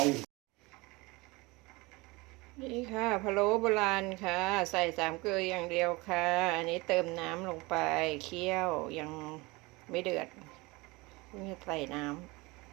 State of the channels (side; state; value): left; quieter; 23.8 dB